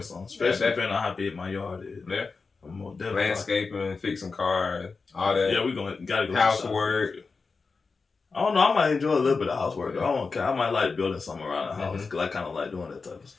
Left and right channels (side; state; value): right; quieter; 4.5 dB